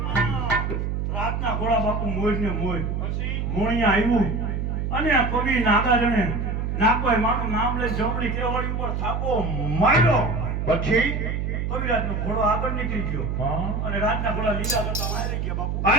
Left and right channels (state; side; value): noise; right; hum, 1 dB below the sound